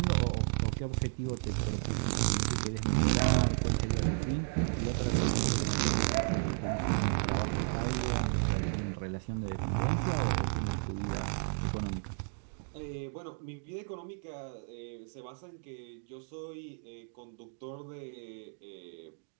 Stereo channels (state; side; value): silent; left; digital silence